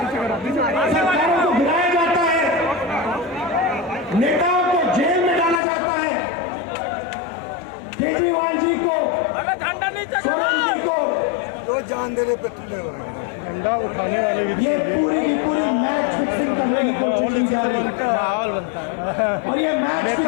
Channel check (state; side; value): drops out; right; at 5.6 s